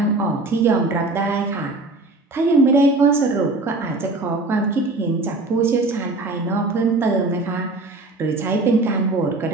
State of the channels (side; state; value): left; quieter; 3.1 dB